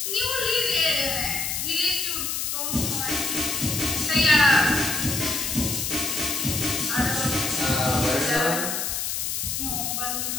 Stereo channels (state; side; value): noise; left; hiss, 1 dB below the sound